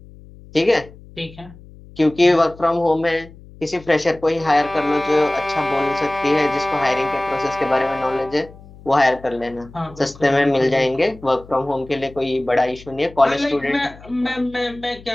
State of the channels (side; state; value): left; noise; hum, 21 dB below the sound